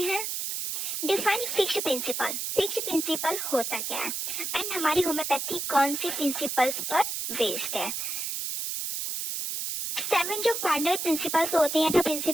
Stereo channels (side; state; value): right; noise; hiss, 3 dB below the sound